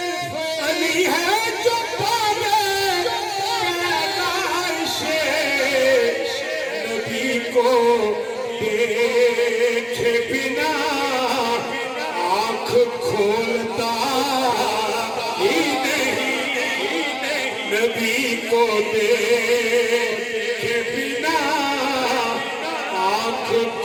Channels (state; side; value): identical; both; correlation 1.00